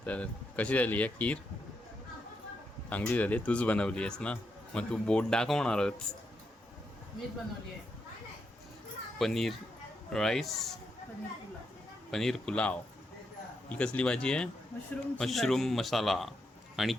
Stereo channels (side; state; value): both; normal; correlation 0.82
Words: तर कशी झाली आहे खीर? चांगली झाली. तूच बनवली आहेस ना, मग तू बोट दाखवणारच. मीच बनवली आहे पनीर राईस, पनीर पुलाव पनीर पुलाव. ही कसली भाजी आहे? मशरूम मसाला आणि